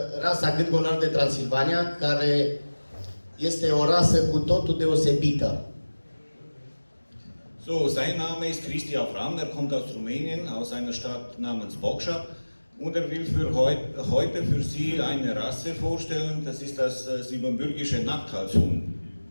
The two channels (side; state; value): both; inverted; correlation -1.00